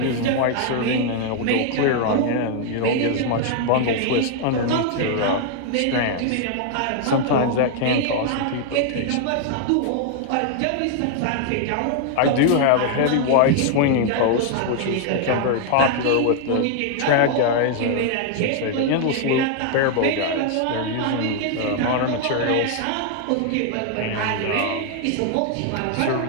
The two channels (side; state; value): both; different; correlation 0.00